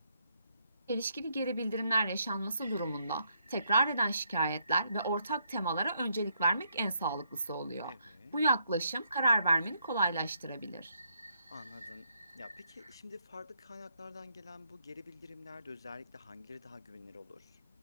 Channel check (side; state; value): both; inverted; correlation -0.75